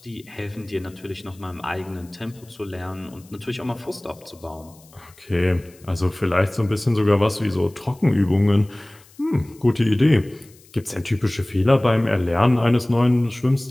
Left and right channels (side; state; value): left; noise; hiss, 27 dB below the sound